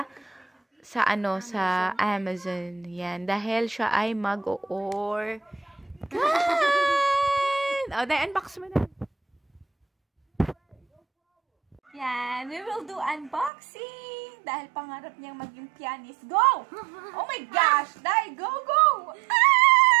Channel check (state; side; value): drops out; left; at 13.5 s